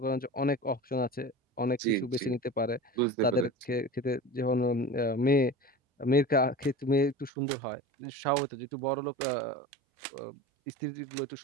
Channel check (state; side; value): drops out; left; at 7.3 s